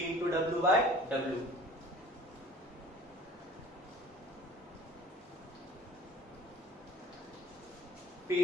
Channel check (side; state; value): both; normal; correlation 0.48